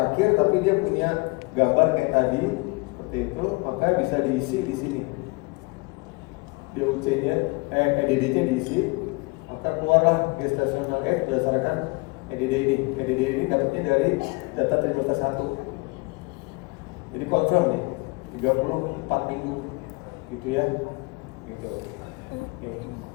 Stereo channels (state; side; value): quieter; right; 27.5 dB